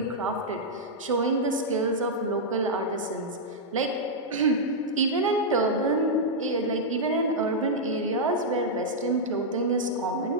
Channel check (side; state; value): both; normal; correlation -0.06